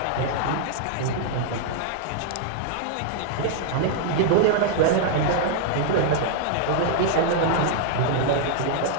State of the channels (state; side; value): different; both; correlation 0.00